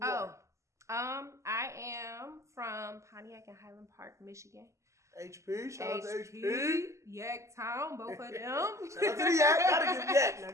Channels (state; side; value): late; left; 0.14 ms